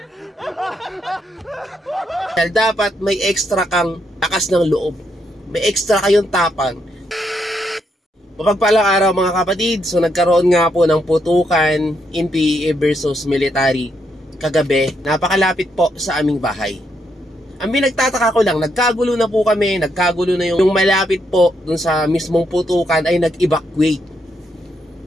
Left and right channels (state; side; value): normal; both; correlation 0.78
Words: Dapat may extra kang lakas ng loob. May extra kayong tapang. Mapagpalang araw mga kapatid. So nagkaroon nga po ng putukan in PEA versus military kagabi. Napakalapit po sa aming bahay. Ang pinagtataka ko lang, nagkagulo na po kami, nagkagulo na yung malapit po dun sa mismong putukan ay nag-evacuate.